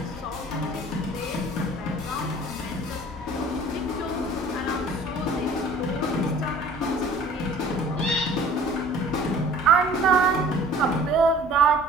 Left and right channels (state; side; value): normal; both; correlation 0.48